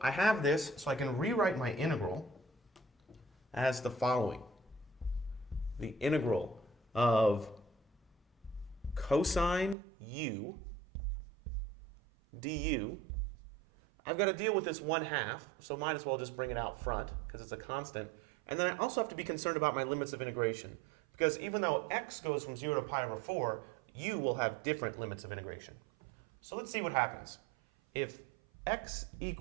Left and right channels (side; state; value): left; drops out; at 9.8 s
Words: I have this, so I can rewrite my integral as the following. The integral of cosine u du. I've got to deal with this 1/2, so might as well just bring it out front because it's a constant. And then I also have to be concerned about my limits of integration because even though x goes from 0 to pi over 4, u will have different limits of integration. So let's see what happens. If x